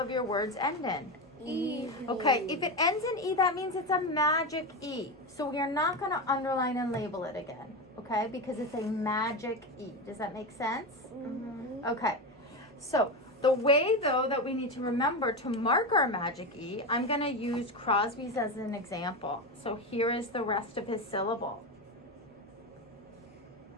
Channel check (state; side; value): normal; both; correlation 0.17